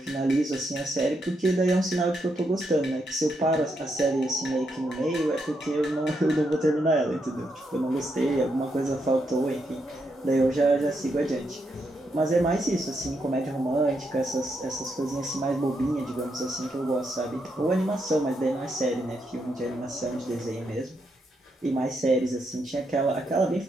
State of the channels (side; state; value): both; normal; correlation 0.80